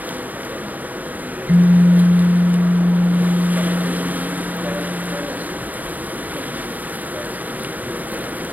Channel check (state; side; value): late; left; 0.080 ms